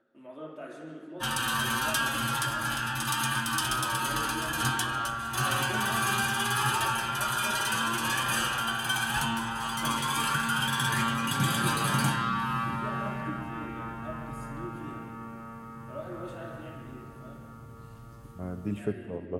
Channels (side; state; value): both; identical; correlation 1.00